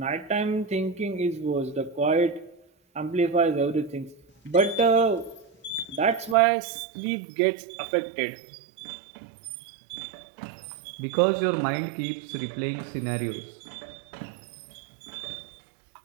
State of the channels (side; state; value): left; drops out; at 6.4 s